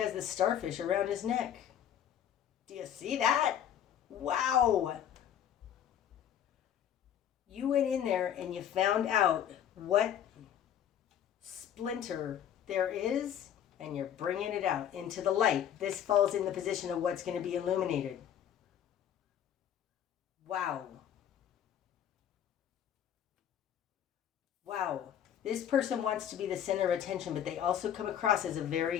the starfish around his neck. Do you see that? Wow. You went in there and you found out what splinter there is, and you're bringing it out into the light. This falls in the position of what's going to be illuminated. Wow. Wow. This person wants to be the center of attention, but they also come across as a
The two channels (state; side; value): quieter; right; 9.9 dB